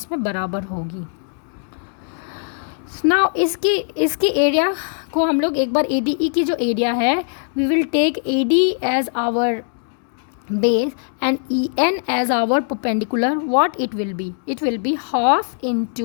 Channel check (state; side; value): silent; right; digital silence